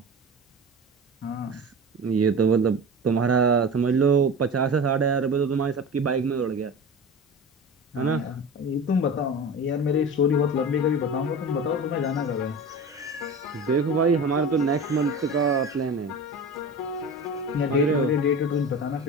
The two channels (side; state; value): both; normal; correlation 0.32